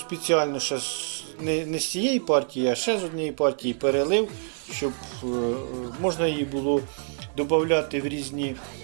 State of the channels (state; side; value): silent; left; 59 dB below the other